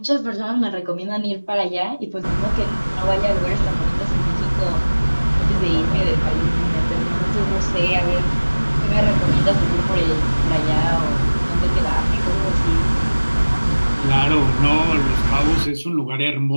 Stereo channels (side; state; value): both; inverted; correlation -1.00